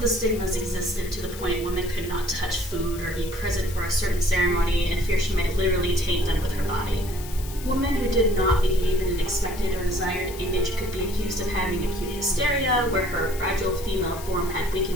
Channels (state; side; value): noise; left; hiss, 14 dB below the sound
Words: stigmas existed to the point women could not touch food or be present for a certain ceremony in fear she might literally taint them with her body. Women who did not behave in an expected or desired image could be accused of having acute hysteria, where her fragile female form had